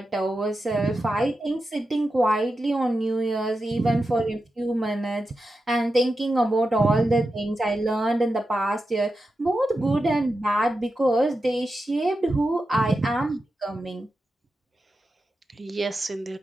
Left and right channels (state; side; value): normal; both; correlation 0.90